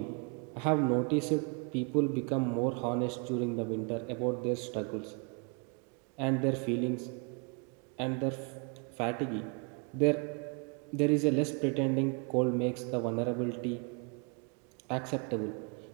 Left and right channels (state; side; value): quieter; left; 35.2 dB